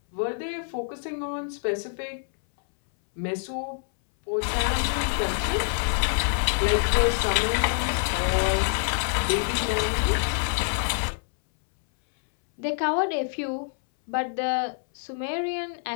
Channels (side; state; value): right; silent; 61 dB below the other